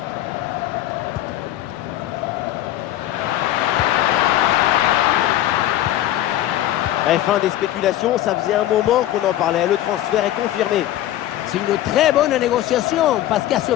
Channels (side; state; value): right; quieter; 13.5 dB